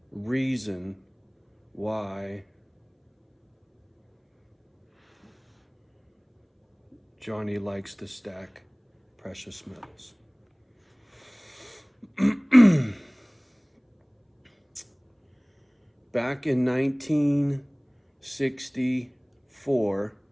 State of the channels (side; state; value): both; identical; correlation 1.00